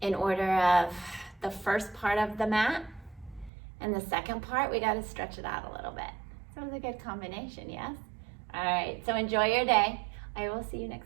in order of the first part of the mat. And the second part, we got to stretch it out a little bit. So it was a good combination, yes? All right, so enjoy your day. I will see you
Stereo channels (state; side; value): drops out; left; at 3.5 s